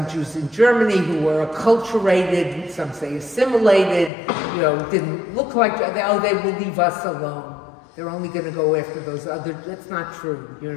Jews in Germany who were acculturated, some say assimilated, you know, didn't look like, oh, they will leave us alone. They're only going to go after those other, that's not true, you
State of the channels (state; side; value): drops out; right; at 4.1 s